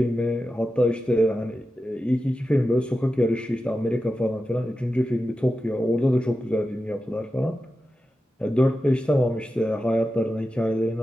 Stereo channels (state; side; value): normal; both; correlation 0.91